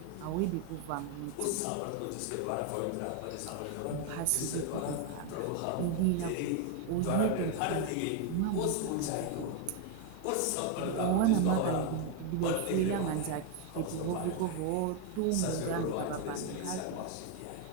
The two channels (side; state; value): both; different; correlation 0.01